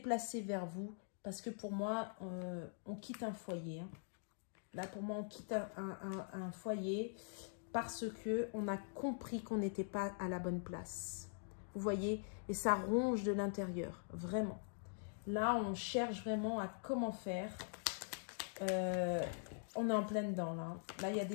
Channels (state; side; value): silent; right; digital silence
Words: vers vous, parce que pour moi, on quitte un foyer. Hein. Là, pour moi, on quitte un foyer parce qu'on a compris qu'on n'était pas à la bonne place. Vous voyez? Et ça ronge de l'intérieur, vraiment. Là, on cherche vraiment à comment faire. On est en plein dedans, là. Là, il y a